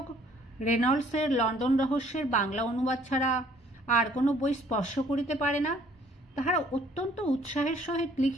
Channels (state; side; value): normal; both; correlation 0.60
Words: রেনল্ডসের লন্ডন রহস্যের বাংলা অনুবাদ ছাড়া আর কোনো বই স্পর্শ করিতে পারে না, তাহারা অত্যন্ত উৎসাহের সহিত